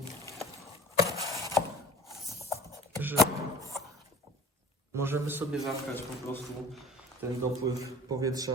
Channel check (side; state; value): both; normal; correlation 0.43